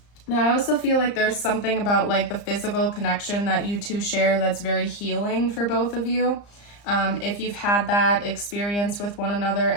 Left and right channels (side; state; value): right; late; 34 ms